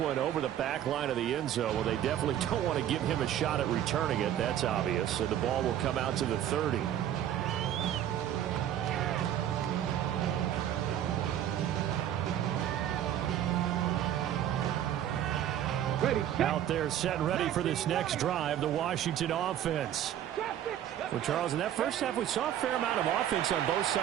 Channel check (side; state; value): left; quieter; 11.0 dB